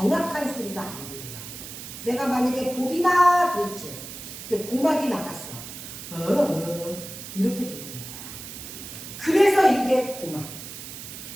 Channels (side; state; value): right; noise; hiss, 11 dB below the sound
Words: 소리가 안 들려. 내가 만약에 보비나 그랬지. 고막이 나갔어. 이렇게 들리는 거야. 그래서 이게 고막.